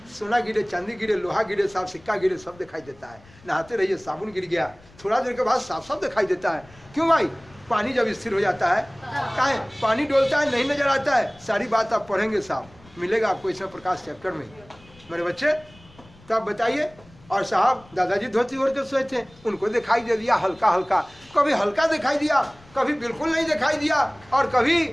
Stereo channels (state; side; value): noise; left; rumble, 26 dB below the sound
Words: सोना गिरे, चांदी गिरे, लोहा गिरे, साफ सिक्का गिरे, सब दिखाई देता है। नहाते रहिए साबुन गिर गया, थोड़ा देर के बाद साफ साफ दिखाई देता है। क्यों भाई? पानी जब स्थिर हो जाता है, काहे पानी डोलता है, नहीं नजर आता है। सारी बात आप पढ़ेंगे, साहब मिलेगा आपको इसमें प्रकाश चैप्टर में मेरे बच्चे। तो आप बताइए। और साहब दादाजी धोती ओढ़ के सोए थे, उनको दिखाई दे दिया हल्का हल्का, कभी हल्का दिखाई दिया, कभी बिल्कुल नहीं दिखाई दिया, और कभी